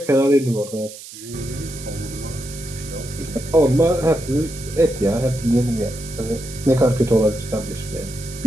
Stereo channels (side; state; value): right; noise; hiss, 15 dB below the sound